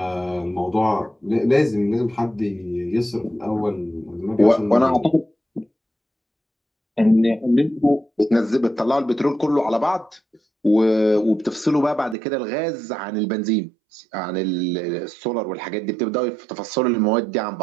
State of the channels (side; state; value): left; drops out; at 12.2 s